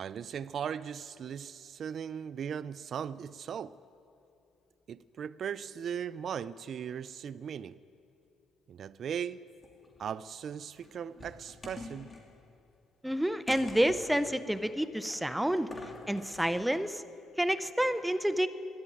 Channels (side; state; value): both; normal; correlation 0.93